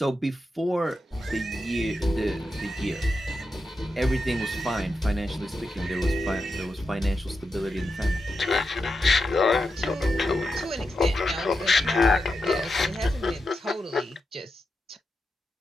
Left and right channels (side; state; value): both; normal; correlation 0.88